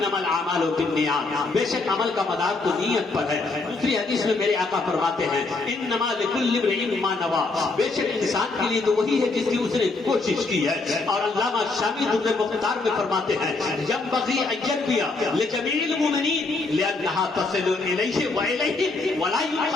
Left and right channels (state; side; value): quieter; right; 3.6 dB